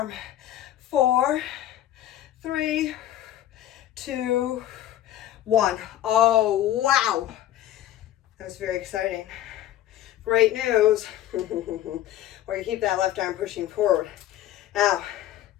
4, 3, 2, 1. Oh, wow. That was very exciting. Great news. We're gonna keep that left arm pushing forward. Now,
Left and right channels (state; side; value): quieter; right; 12.7 dB